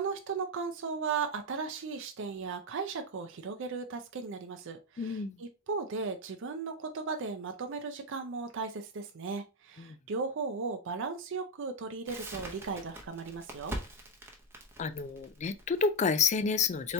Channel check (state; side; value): normal; both; correlation 0.06